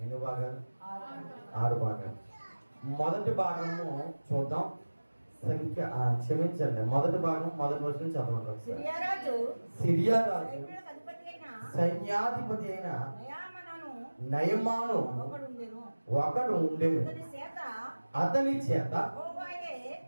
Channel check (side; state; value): both; inverted; correlation -1.00